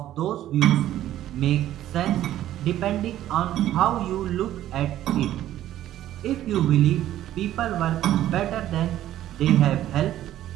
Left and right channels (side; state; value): left; quieter; 12.9 dB